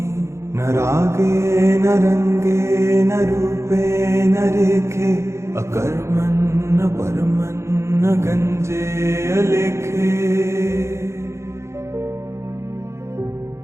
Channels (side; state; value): left; late; 0.13 ms